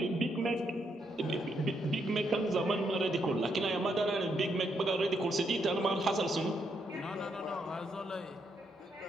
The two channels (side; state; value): both; normal; correlation 0.77